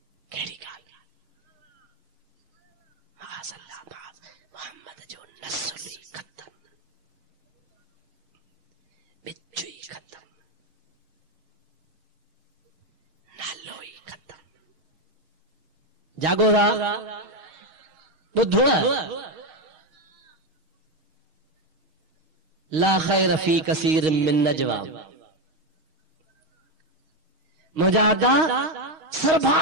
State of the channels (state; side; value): late; left; 6.4 ms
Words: मोहम्मद जो नस्ल ही खत्म, बिच्चू ही खत्म, नालो ही खत्म। जागो बुद्धो ला खैर फी कसीर मिन नजवा। मुजादा